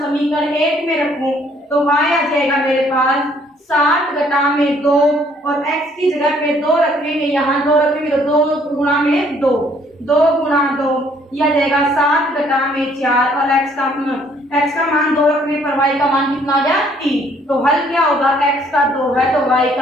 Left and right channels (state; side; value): normal; both; correlation 0.63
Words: समीकरण 1 में रखूं तो y आ जाएगा मेरे पास 7 घटा में 2, और x की जगह पे 2 रखेंगे, यहाँ 2 रखेंगे तो 2 गुणा में 2, 2 गुणा 2 यह जाएगा 7 घटा में 4, और x का मान 2 रखने पर y का मान कितना आ गया 3। तो हल क्या होगा, x का 2 है तो y